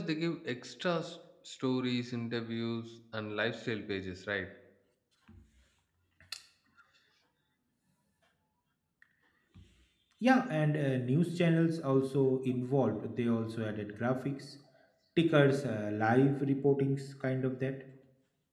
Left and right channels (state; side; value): identical; both; correlation 1.00